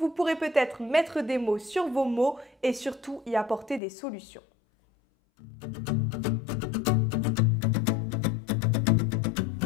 vous pourrez peut-être mettre des mots sur vos mots et surtout y apporter des solutions.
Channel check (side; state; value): right; drops out; at 3.8 s